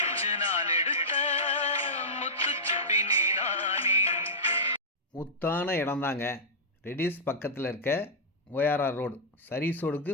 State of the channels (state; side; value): normal; both; correlation -0.13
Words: முத்தான இடம்தாங்க. ரெடிஸ் பக்கத்தில் இருக்க ஓஆர்ஆர் ரோடு சர்வீஸ் ரோடுக்கு